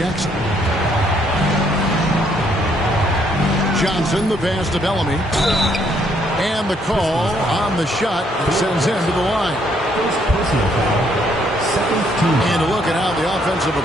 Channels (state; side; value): normal; both; correlation 0.69